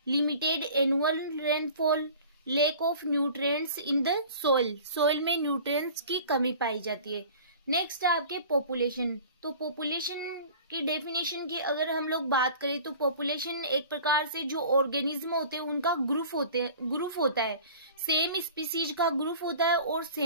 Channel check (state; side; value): inverted; both; correlation -0.43